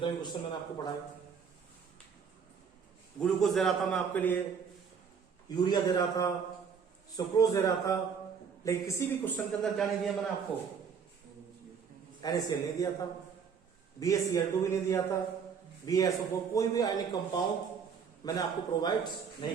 भी क्वेश्चन मैंने आपको पढ़ाया। ग्लूकोज दे रहा था मैं आपके लिए, यूरिया दे रहा था, सुक्रोज दे रहा था, लेकिन किसी भी क्वेश्चन के अंदर क्या नहीं दिया मैंने आपको, NaCl नहीं दिया था, BaCl2 भी नहीं दिया था, BaSO4, कोई भी आयनिक कंपाउंड मैंने आपको प्रोवाइड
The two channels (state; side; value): quieter; left; 6.5 dB